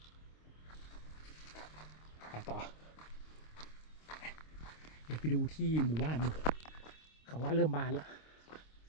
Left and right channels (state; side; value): late; right; 26 ms